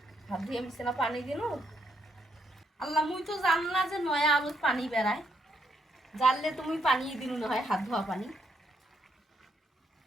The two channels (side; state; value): both; normal; correlation 0.76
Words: হাত ধুইয়া মিশছে না পানি দিনু আল্লাহ মুই তো জান না যে নয়া আলুত পানি বেড়ায় জানলে তুমি পানি দিনু না হয় হাত ধোয়া পানি